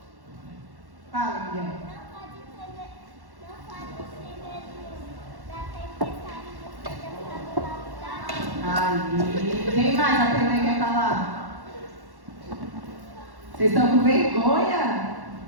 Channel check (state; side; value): late; left; 1.1 ms